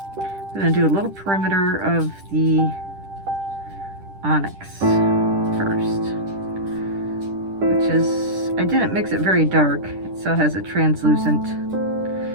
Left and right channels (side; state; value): left; late; 10 ms